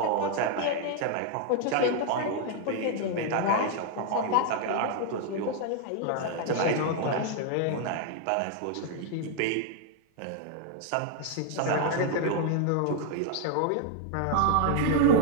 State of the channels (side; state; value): both; different; correlation 0.00